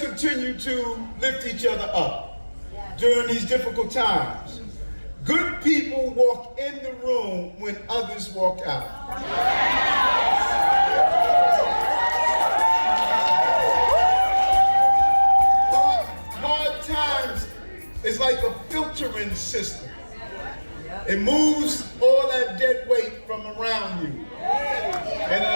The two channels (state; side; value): inverted; both; correlation -1.00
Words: continue to lift each other up during these difficult times. Good people walk in the room when others walk out. Hard times is like a filtering system. It moves all that dead weight from around you, and